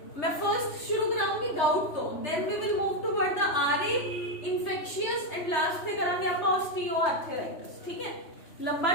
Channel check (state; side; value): late; right; 3.3 ms